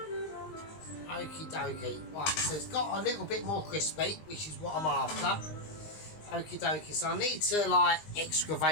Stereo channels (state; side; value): late; right; 19 ms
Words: Okie dokie. Right, so it's got a little bit more crispy, which is what I'm after. Okie dokie. So I need to, like,